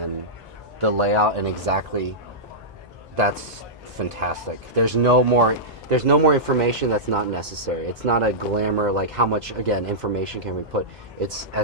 the layout and exactly that's fantastic. There's no more information that's not necessary. It's not a glamour, like how much, again, information can we put. It's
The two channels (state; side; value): normal; both; correlation -0.14